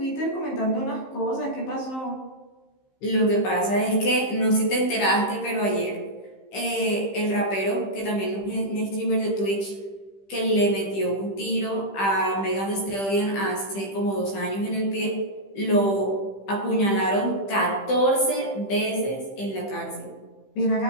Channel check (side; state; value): right; late; 15 ms